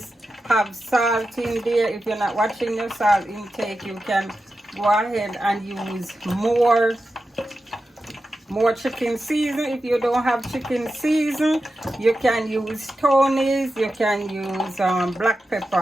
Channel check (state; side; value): normal; both; correlation 0.91